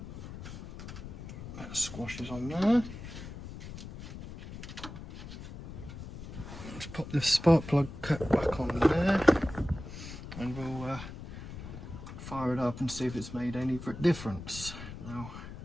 That squashes on there. Let's pop the spark plug cap back on there, and we'll fire it up and see if it's made any difference. Now,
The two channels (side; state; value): left; noise; rumble, 11 dB below the sound